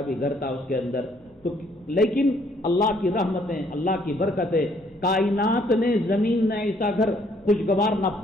بھی گھر تھا اس کے اندر. تو لیکن اللہ کی رحمتیں، اللہ کی برکتیں، کائنات نے زمین نے ایسا گھر خوشگوار نہ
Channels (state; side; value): normal; both; correlation 0.65